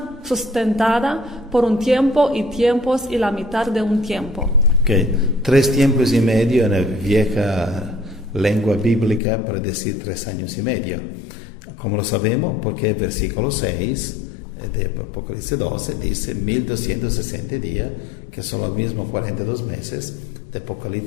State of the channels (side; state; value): right; drops out; at 9.2 s